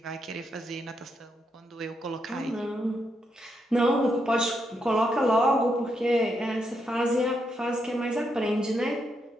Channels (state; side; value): normal; both; correlation 0.80